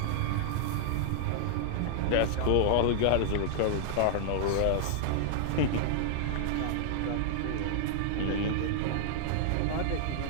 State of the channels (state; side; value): different; both; correlation -0.01